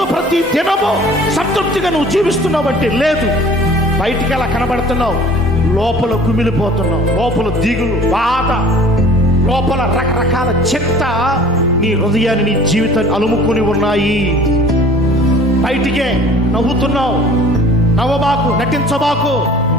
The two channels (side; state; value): both; normal; correlation 0.47